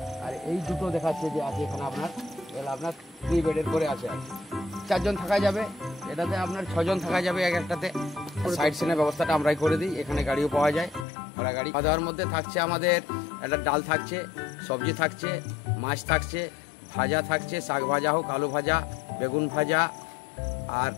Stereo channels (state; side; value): drops out; right; at 11.1 s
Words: আর এই দুটো দেখাচ্ছে যে আছে এখানে আপনার, এগুলো আপনার 3 বেডের করে আছে। 4 জন থাকা যাবে, এটাতে আপনার 6 জন থাকা যাবে এক একটাতে। সাইড সিনের ব্যবস্থাটা আমরাই করে দিই, এখানে গাড়িও পাওয়া যায়, ভাড়া গাড়ি। খাওয়া দাওয়ার মধ্যে থাকছে আমাদের একটা ডাল থাকছে, সবজি থাকছে, মাছ থাকছে, ভাজা থাকছে, শাক ভাজা হোক, আলু ভাজা, বেগুন ভাজা, আর